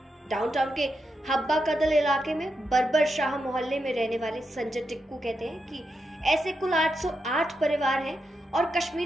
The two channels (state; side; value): normal; both; correlation 0.85